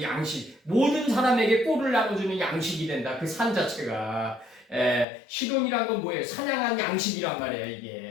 양식. 모든 사람에게 꼴을 나눠주는 양식이 된다. 그 산 자체가. 시돈이란 건 뭐예요? 사냥한 양식이란 말이에요.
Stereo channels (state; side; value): drops out; right; at 5.1 s